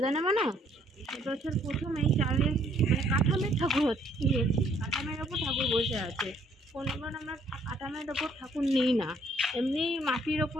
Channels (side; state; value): both; normal; correlation 0.64